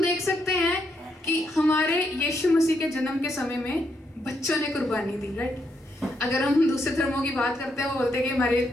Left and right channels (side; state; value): both; normal; correlation 0.78